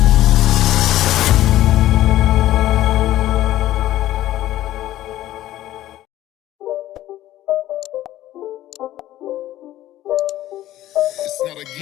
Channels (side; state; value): right; quieter; 14.1 dB